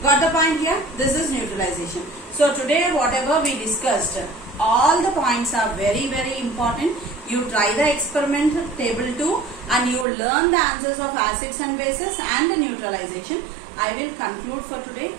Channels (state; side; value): drops out; left; at 10.1 s